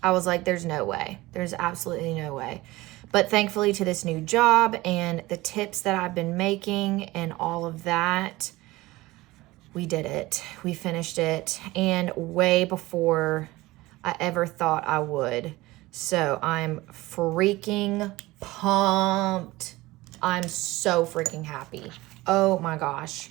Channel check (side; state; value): left; quieter; 19.5 dB